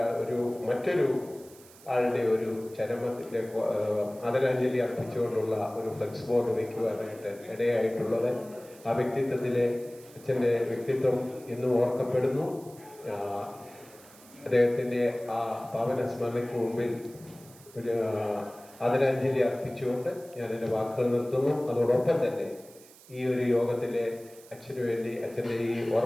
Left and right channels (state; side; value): noise; right; hiss, 23 dB below the sound